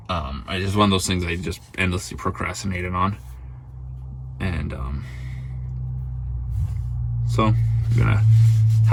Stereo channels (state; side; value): identical; both; correlation 1.00